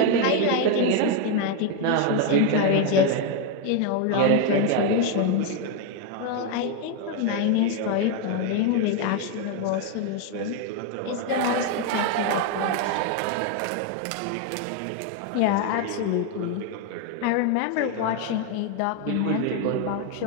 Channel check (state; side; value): different; both; correlation 0.01